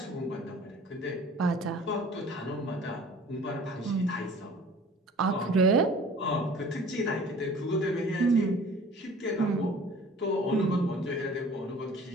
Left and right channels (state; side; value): normal; both; correlation 0.47